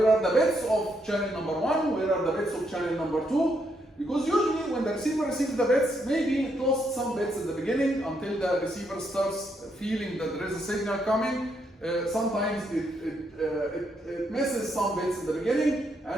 are the bits of channel number 1, where are the bits of channel number 2, because usually when the receiver receives the bits, maybe it lost some bits in the beginning until the receiver starts feeling that there is a signal coming. Sometimes it misses some bits in the beginning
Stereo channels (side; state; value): both; normal; correlation 0.77